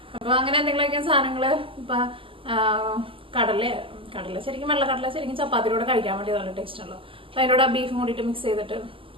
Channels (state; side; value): late; left; 0.25 ms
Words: അപ്പോൾ അങ്ങനെ എന്തെങ്കിലുമൊക്കെ സാധനങ്ങൾ ഇപ്പം കടല ശരിക്കും വെള്ളക്കടല ശരിക്കും ചപ്പാത്തിയുടെ കൂടെ കഴിക്കാൻ വേണ്ടി നല്ല ടേസ്റ്റ് ഉള്ളൂ. അപ്പോൾ അതിൻ്റെ ബീഫും കൂടിയിട്ട് മിക്സ് ചെയ്തിട്ട്